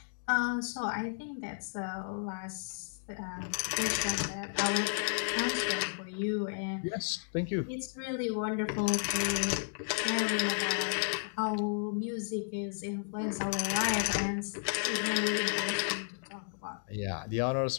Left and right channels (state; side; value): silent; right; digital silence